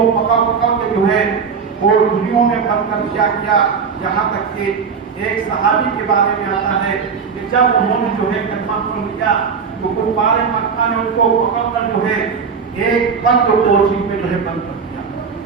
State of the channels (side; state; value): left; quieter; 5.9 dB